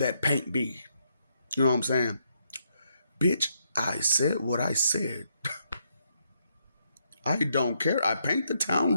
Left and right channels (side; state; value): both; inverted; correlation -0.77